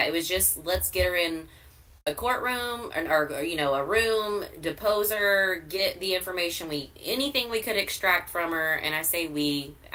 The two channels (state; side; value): identical; both; correlation 1.00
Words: It was just, let's get her in a courtroom or a room, depose her, get the information anything we could extract from her. And I say we